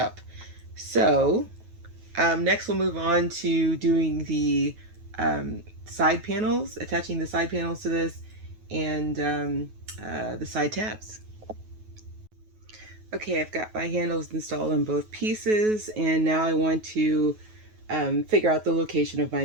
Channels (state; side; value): late; left; 9.3 ms